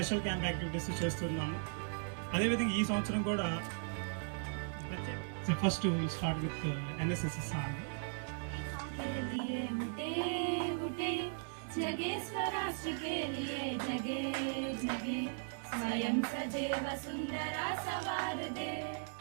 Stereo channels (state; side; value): silent; left; 53 dB below the other